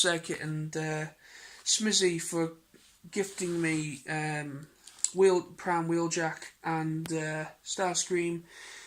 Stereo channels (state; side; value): identical; both; correlation 1.00